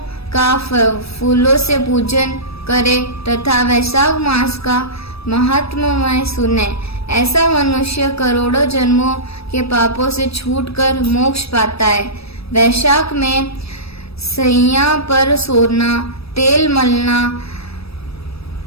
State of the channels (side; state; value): right; late; 0.78 ms